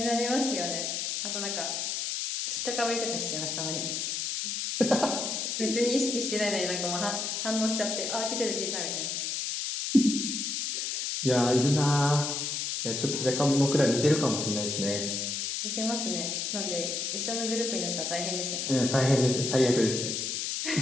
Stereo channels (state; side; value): noise; left; hiss, 2 dB below the sound